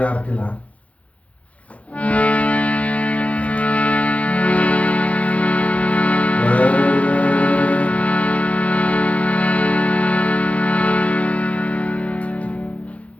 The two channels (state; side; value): late; right; 0.065 ms